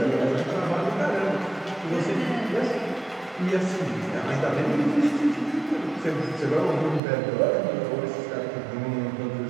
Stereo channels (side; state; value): left; drops out; at 7.0 s